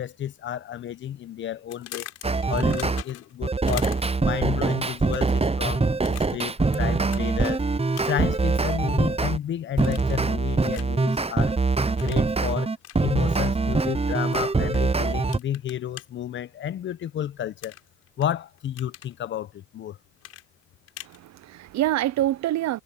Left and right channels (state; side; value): normal; both; correlation 0.59